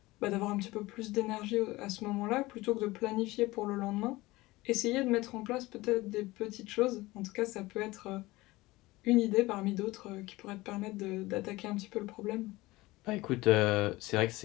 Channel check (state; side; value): quieter; right; 20.0 dB